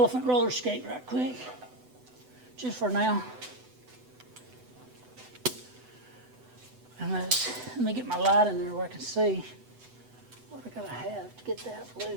roller skate right quick, just for now. And let me get my light in there where I can see what I gotta have to get that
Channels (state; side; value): late; left; 8.0 ms